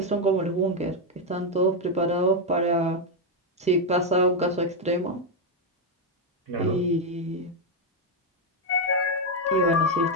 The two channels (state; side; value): normal; both; correlation 0.03